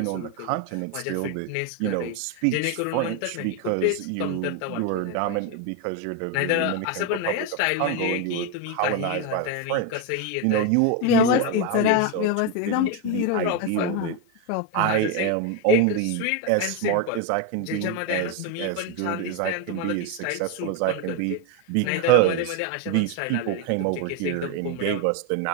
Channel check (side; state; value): both; different; correlation 0.02